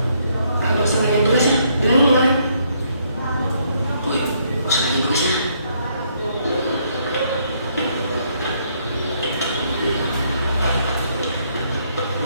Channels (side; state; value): both; inverted; correlation -0.71